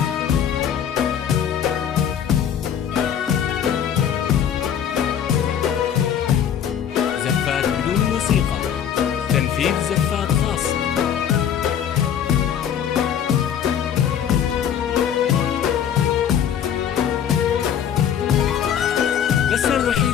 زفات بدون موسيقى. تنفيذ زفات خاصة. لسنا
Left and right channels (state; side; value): quieter; right; 9.0 dB